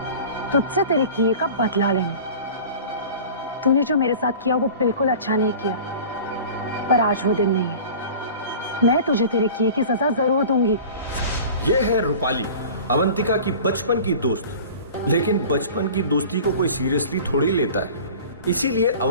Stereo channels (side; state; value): both; inverted; correlation -0.40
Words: तुझसे तेरे किए का बदला लेने। तूने जो मेरे साथ किया वो बिल्कुल अच्छा नहीं किया, पर आज वो दिन नहीं है। मैं तुझे तेरे किए की सजा जरूर दूंगी। ये है रूपाली, अवंतिका की बचपन की दोस्त। लेकिन बचपन की दोस्ती को कोई सीरियसली थोड़ी लेता है, इसीलिए